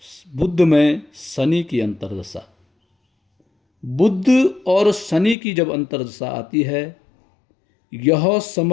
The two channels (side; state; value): right; drops out; at 5.4 s